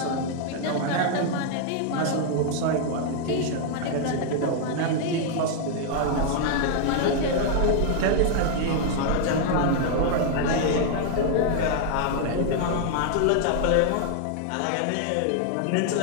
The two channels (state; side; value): different; both; correlation 0.00